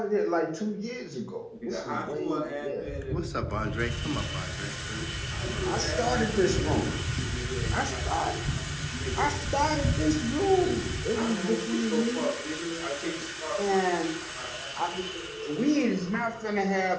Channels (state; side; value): identical; both; correlation 1.00